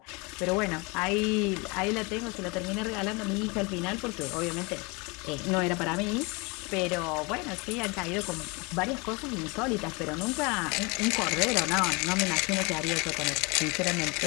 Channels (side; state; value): right; quieter; 27.9 dB